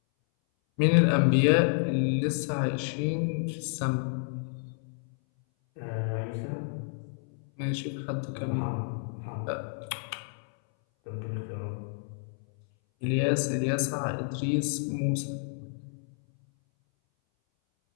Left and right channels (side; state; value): right; silent; 58 dB below the other